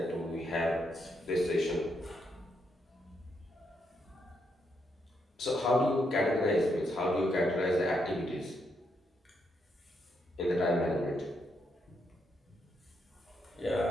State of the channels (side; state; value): both; normal; correlation 0.78